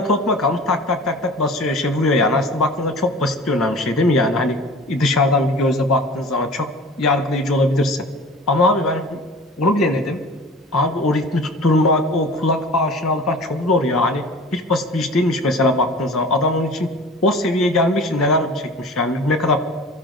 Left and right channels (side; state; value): both; normal; correlation 0.40